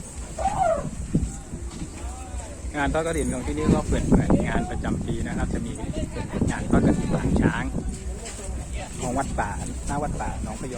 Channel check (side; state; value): both; identical; correlation 1.00